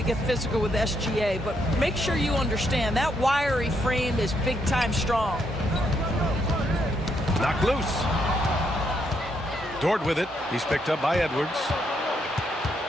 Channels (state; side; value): normal; both; correlation 0.76